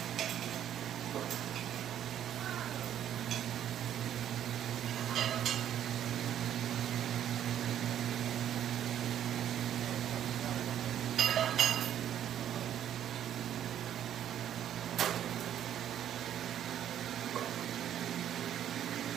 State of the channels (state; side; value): quieter; left; 10.5 dB